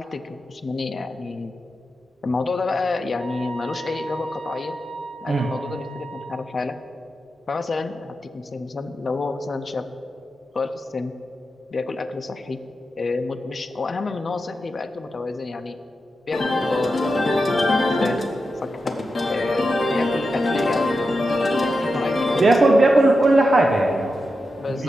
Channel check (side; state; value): both; normal; correlation 0.89